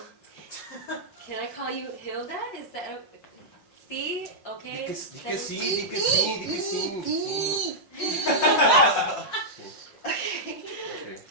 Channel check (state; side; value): late; right; 5.6 ms